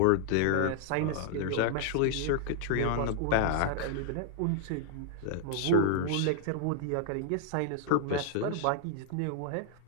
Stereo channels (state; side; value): different; both; correlation 0.00